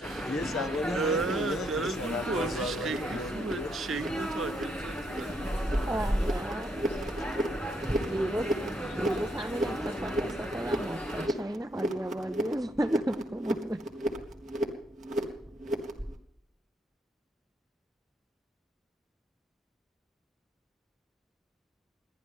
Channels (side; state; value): both; normal; correlation 0.75